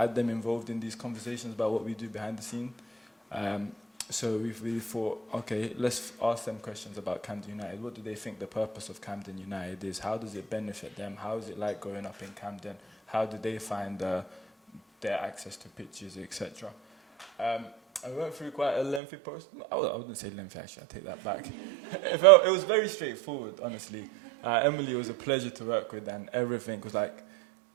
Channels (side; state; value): left; drops out; at 19.0 s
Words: them involved in these conversations about what we do behind the scene. So we've really thought, okay, let's ask them questions about Camden United. What do they think the purpose of Camden United is? How does it benefit them? How is it like growing up in Camden? How do they find their access to pitches, etc.? I went through quite a lengthy process. I wouldn't say lengthy, actually, I take that back. It was very straightforward, honestly. Emily was a pleasure to work with, and everything was like,